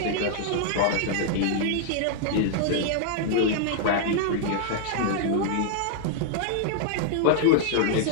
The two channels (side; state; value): both; different; correlation -0.01